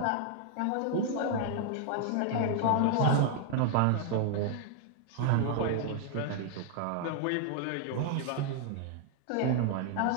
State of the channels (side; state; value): both; different; correlation 0.00